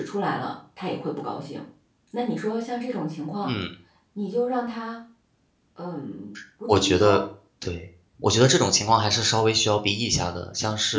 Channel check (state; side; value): identical; both; correlation 1.00